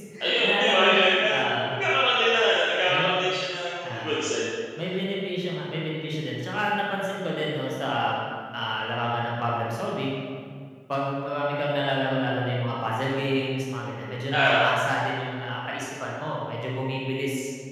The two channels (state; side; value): identical; both; correlation 1.00